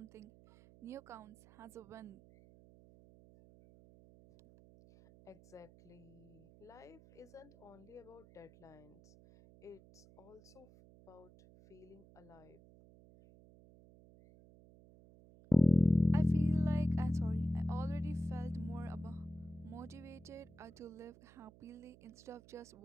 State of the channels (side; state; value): right; noise; hum, 23 dB below the sound